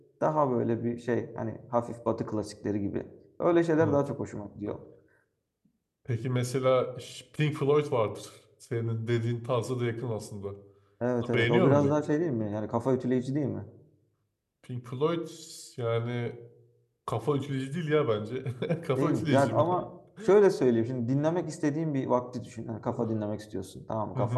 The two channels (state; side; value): identical; both; correlation 1.00